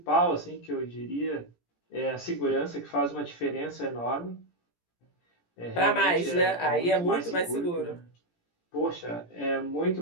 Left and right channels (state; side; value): late; right; 17 ms